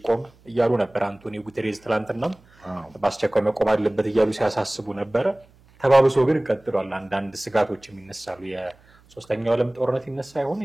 እያሉ ነበር አንቶኒዮ ጉተሬዝ ትላንትና በአስቸኳይ መቆም አለበት እያሉ ሲያሳስቡ ነበር ተባብሶ ግን ቀጥሏል አንዳንድ ስጋቶች የሚነሳሉ የሶስተኛው ዓለም ጦርነት ይነሳ ይሆን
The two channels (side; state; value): right; noise; hum, 29 dB below the sound